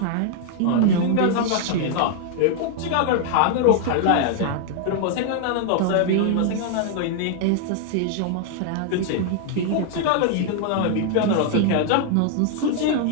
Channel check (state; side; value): different; both; correlation 0.00